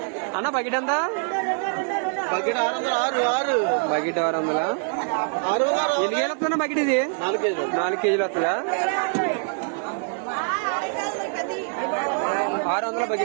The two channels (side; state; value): left; silent; 62 dB below the other